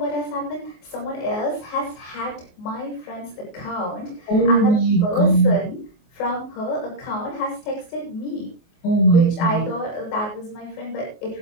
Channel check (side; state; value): right; late; 24 ms